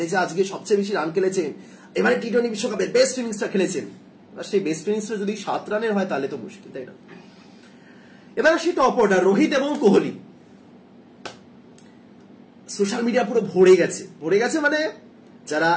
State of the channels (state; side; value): identical; both; correlation 1.00